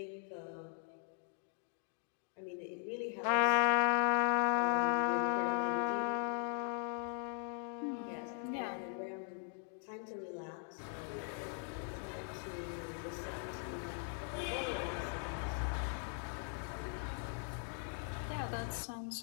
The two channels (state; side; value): silent; right; 51 dB below the other